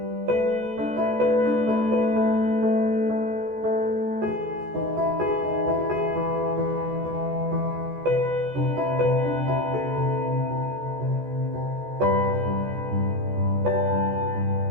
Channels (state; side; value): late; left; 14 ms